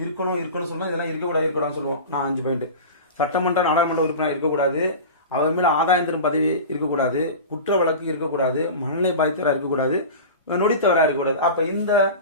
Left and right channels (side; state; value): both; inverted; correlation -0.31